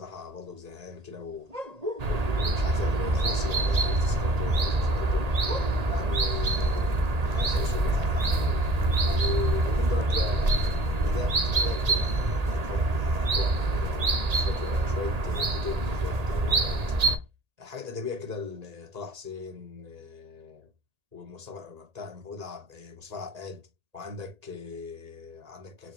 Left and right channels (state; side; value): late; left; 1.8 ms